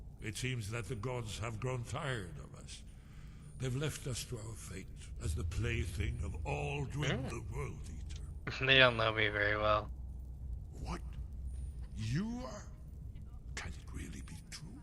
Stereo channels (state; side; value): identical; both; correlation 1.00